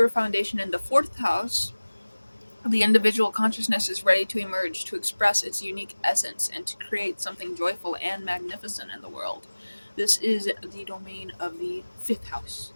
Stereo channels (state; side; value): inverted; both; correlation -1.00